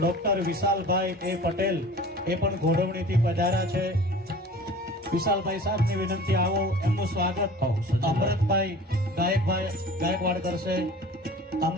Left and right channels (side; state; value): both; normal; correlation 0.42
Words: વિશાલભાઈ એ પટેલ, એ પણ ઘોડવણીથી પધાર્યા છે. વિશાલભાઈ સાહેબની વિનંતી આવો, એમનું સ્વાગત. અમૃતભાઈ ગાયકવાડ કરશે.